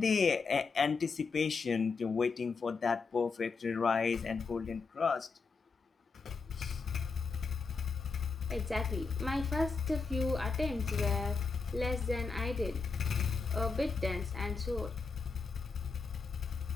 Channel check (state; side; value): quieter; right; 4.7 dB